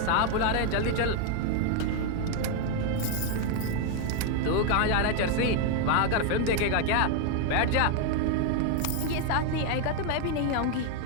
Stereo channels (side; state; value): both; different; correlation 0.01